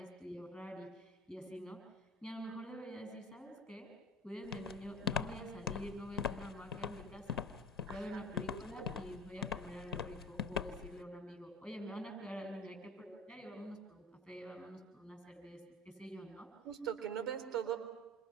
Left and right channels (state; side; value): normal; both; correlation 0.37